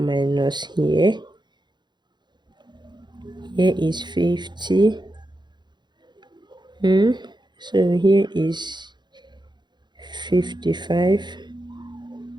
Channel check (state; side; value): late; left; 0.21 ms